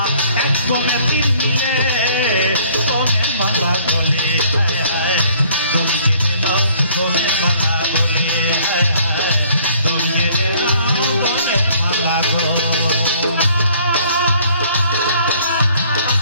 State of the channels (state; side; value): inverted; both; correlation -0.59